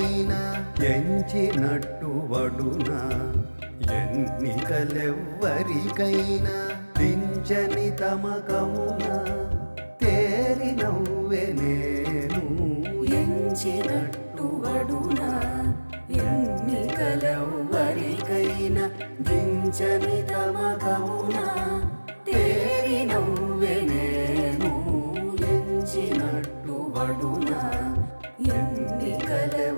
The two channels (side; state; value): both; inverted; correlation -1.00